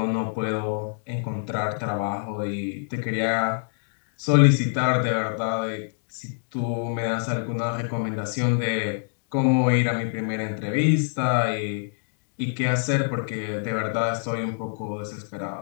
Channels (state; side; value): silent; right; digital silence